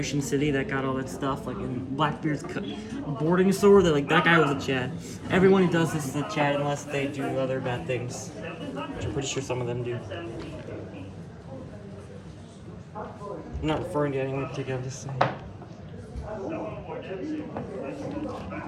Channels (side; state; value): both; identical; correlation 1.00